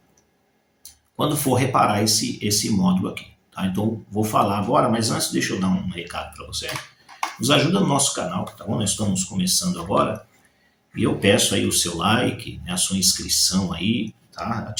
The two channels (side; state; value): both; identical; correlation 1.00